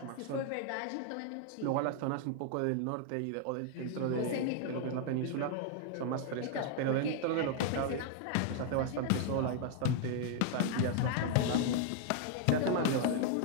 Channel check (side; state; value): both; different; correlation 0.00